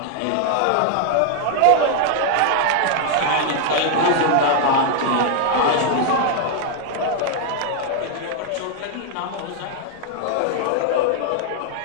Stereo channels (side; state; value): both; different; correlation 0.00